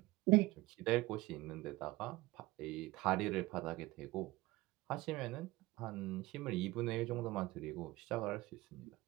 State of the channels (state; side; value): quieter; left; 19.7 dB